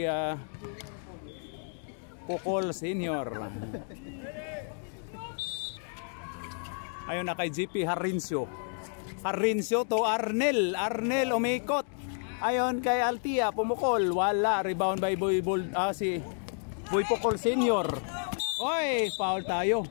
Pocol Senior. Ayon na kay GP Harincio. Harincio to Arnel. Arnel umikot. Ayon kay Altia, pumukol, wala. Rebound by si Boy Pocol Senior. Oy, foul tayo.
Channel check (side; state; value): right; silent; 56 dB below the other